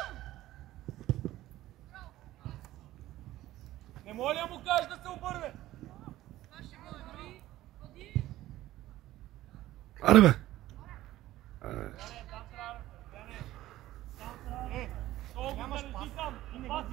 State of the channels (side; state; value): left; quieter; 15.3 dB